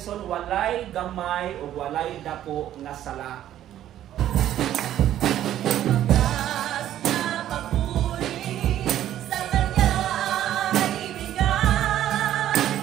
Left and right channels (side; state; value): left; quieter; 12.0 dB